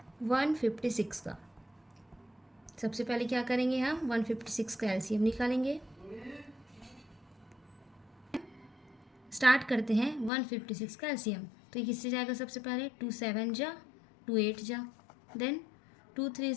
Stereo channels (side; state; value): right; drops out; at 10.3 s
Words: 156 का। सबसे पहले क्या करेंगे, हम 156 का एलसीएम निकालेंगे। स्टार्ट करते हैं 156 का एलसीएम। तो ये किससे जाएगा, सबसे पहले 2 7 जा 2 8 जा, देन 2 3